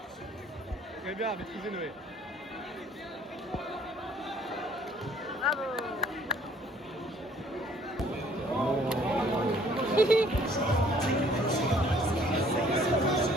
Très bien, maîtrisez Noé. Bravo.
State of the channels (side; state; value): both; normal; correlation 0.59